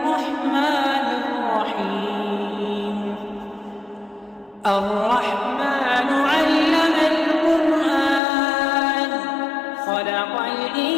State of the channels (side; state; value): right; drops out; at 8.2 s